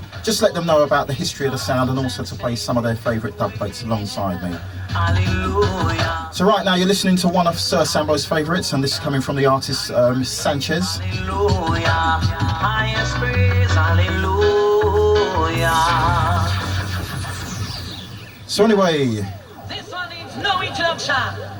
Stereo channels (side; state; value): both; identical; correlation 1.00